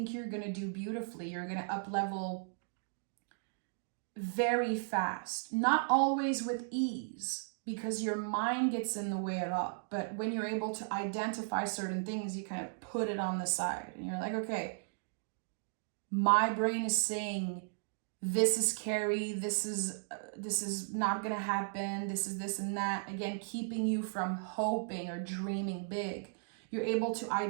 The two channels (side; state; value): left; silent; digital silence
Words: you're going to do beautifully. You're going to up level very fast. Not always with ease, because your mind gets in the way a lot. But when you're able to identify certain things, you kind of put it on the side. And you're like, okay, my brain is saying, this is scary, this is not going to happen, this is this and that. Again, keeping you from hoping or dreaming big. You're able to